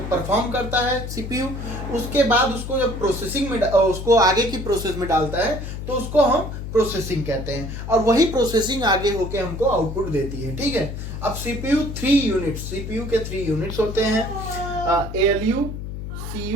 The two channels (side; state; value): left; noise; hum, 7 dB below the sound